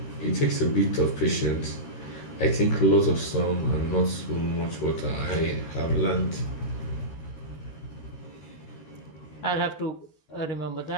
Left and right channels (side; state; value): right; late; 13 ms